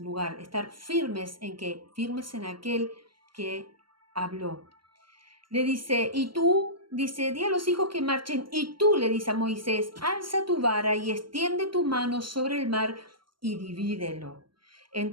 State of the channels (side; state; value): left; late; 0.73 ms